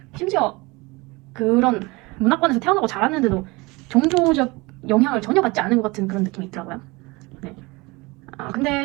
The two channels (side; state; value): left; quieter; 24.3 dB